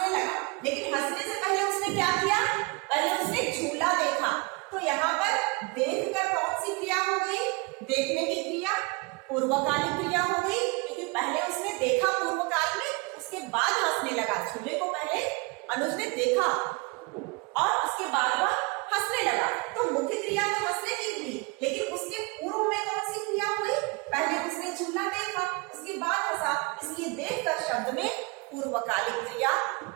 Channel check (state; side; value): quieter; left; 28.1 dB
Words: लगा, लेकिन हंसने से पहले उसने क्या किया? पहले उसने झूला देखा। तो यहाँ पर देखकर कौन सी क्रिया हो गई? देखने की क्रिया पूर्वकालिक क्रिया हो गई, क्योंकि पहले उसने देखा पूर्वकाल में, उसके बाद हंसने लगा। झूले को पहले अनुज ने देखा और उसके बाद वह हंसने लगा। तो मुख्य क्रिया तो हंसने की हुई, लेकिन उसके पूर्व में कौन सी क्रिया हुई? पहले उसने झूला देखा, उसके बाद हंसा, इसलिए देखकर शब्द में पूर्वकालिक क्रिया